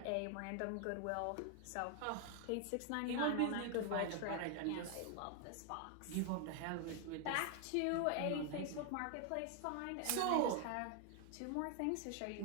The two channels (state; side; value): different; both; correlation 0.00